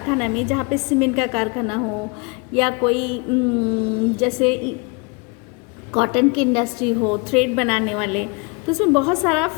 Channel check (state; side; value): quieter; right; 30.3 dB